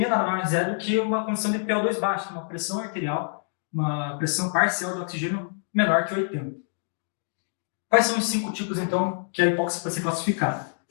nada mais é do que uma condição de PO2 baixo, uma pressão arterial, uma pressão parcial de oxigênio menor que 80. Quais são os 5 tipos, então, que a hipóxia pode ser classificada?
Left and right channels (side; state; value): right; silent; digital silence